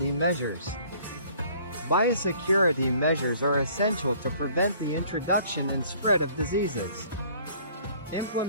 measures. Biosecurity measures are essential to prevent the introduction and spread of diseases.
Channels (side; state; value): both; inverted; correlation -0.56